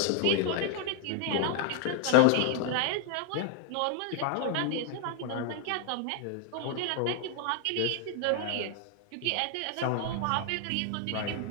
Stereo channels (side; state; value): both; different; correlation 0.00